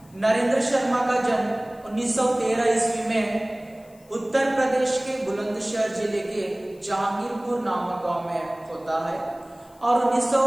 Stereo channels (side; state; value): left; noise; hiss, 29 dB below the sound